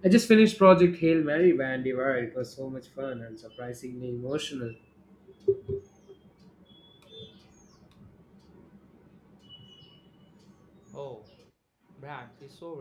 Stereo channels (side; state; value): both; identical; correlation 1.00